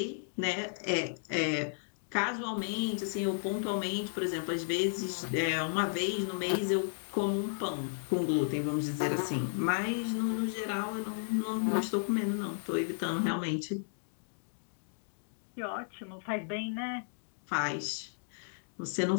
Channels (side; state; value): right; silent; digital silence